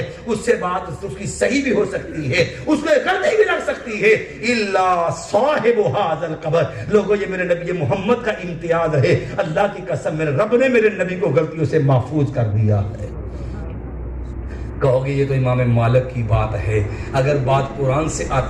اس سے بات اس کی صحیح بھی ہو سکتی ہے، اس میں غلطی بھی لگ سکتی ہے، الا صاحب هذا القبر۔ لوگوں یہ میرے نبی محمد کا امتیاز ہے، اللہ کی قسم میرے رب نے میرے نبی کو غلطیوں سے محفوظ کر دیا ہے۔ کہو گے یہ تو امام مالک کی بات ہے، اگر بات قرآن سے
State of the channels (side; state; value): both; identical; correlation 1.00